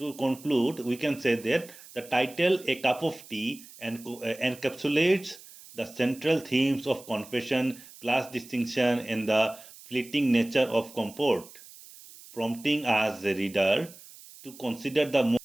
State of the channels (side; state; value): right; noise; hiss, 19 dB below the sound